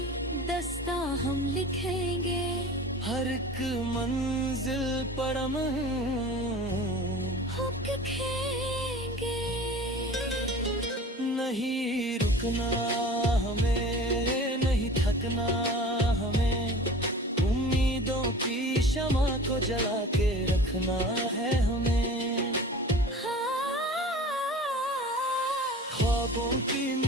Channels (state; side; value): normal; both; correlation 0.40